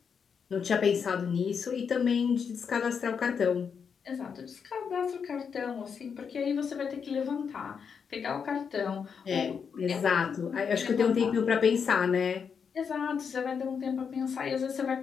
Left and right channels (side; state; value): right; quieter; 6.5 dB